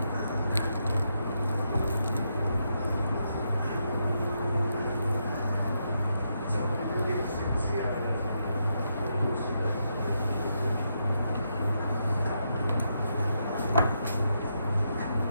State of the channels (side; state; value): both; inverted; correlation -0.81